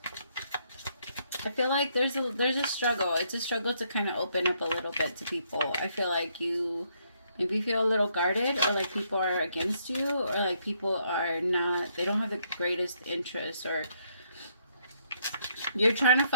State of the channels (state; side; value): inverted; both; correlation -0.72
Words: I feel like there's a struggle. It's a struggle to kind of open up a little bit to people. I feel like you maybe feel a little guarded, or like people are against you, or like people are not, they don't have the greatest interest, or you're trying to